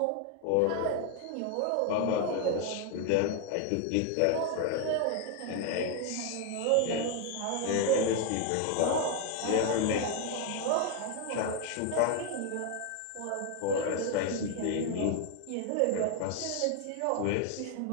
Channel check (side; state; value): both; different; correlation 0.01